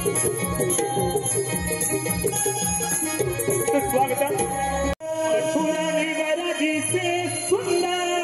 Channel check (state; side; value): identical; both; correlation 1.00